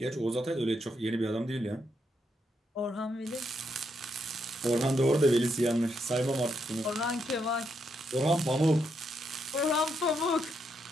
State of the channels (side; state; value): both; normal; correlation 0.79